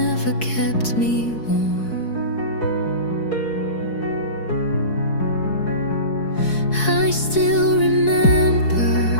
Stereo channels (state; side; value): late; right; 4.7 ms